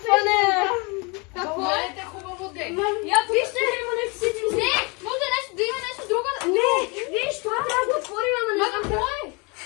Какво е? Гледайте хубаво, де. Вижте, има нещо си. Не, може да има нещо друго. Не, виж, това трябва да отворим, ама не знам какво е.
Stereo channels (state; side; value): quieter; right; 30.2 dB